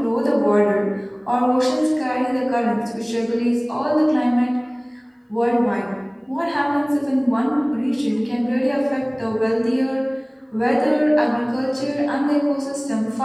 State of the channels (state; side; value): identical; both; correlation 1.00